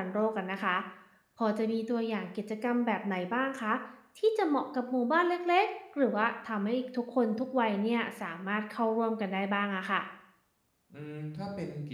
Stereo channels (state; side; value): identical; both; correlation 1.00